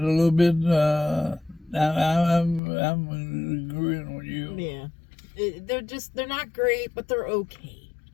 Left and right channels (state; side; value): drops out; right; at 2.6 s